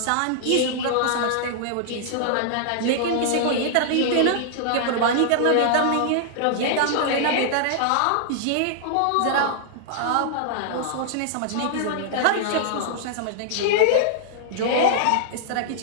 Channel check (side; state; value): both; different; correlation -0.01